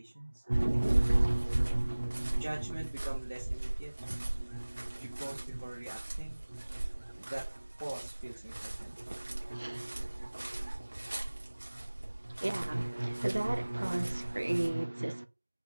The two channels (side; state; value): both; inverted; correlation -1.00